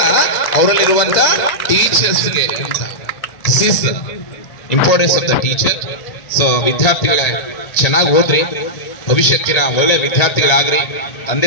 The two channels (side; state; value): right; late; 1.8 ms